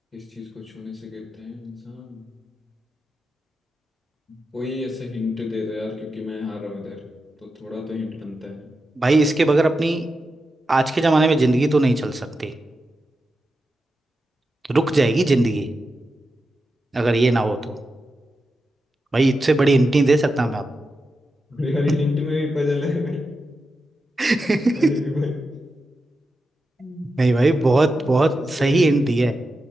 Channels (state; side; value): normal; both; correlation 0.89